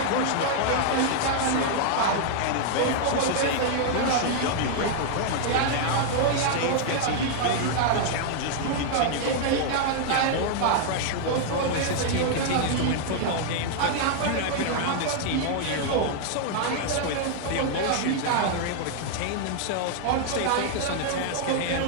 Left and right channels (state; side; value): different; both; correlation -0.01